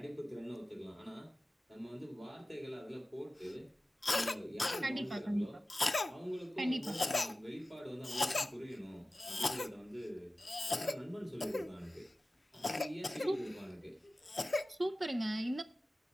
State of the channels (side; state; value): both; normal; correlation 0.96